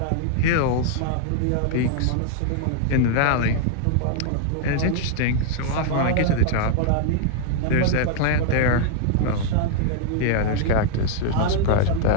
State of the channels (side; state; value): both; different; correlation 0.00